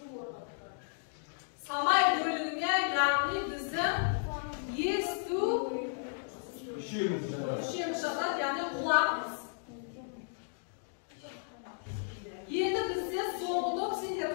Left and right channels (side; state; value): right; silent; digital silence